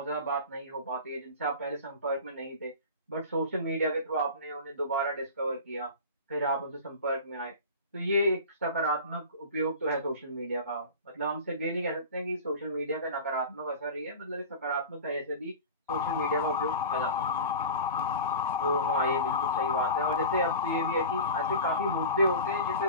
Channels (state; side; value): inverted; both; correlation -0.33